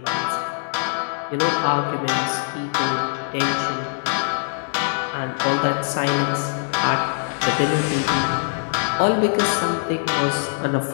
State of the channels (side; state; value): right; silent; digital silence